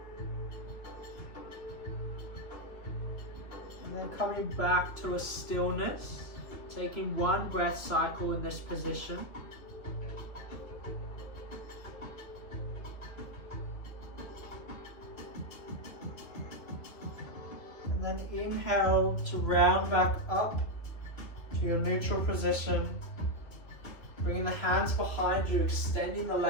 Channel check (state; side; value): late; right; 2.7 ms